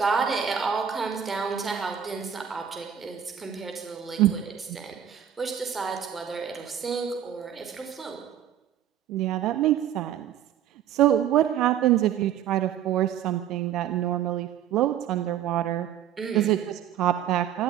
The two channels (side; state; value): left; quieter; 9.7 dB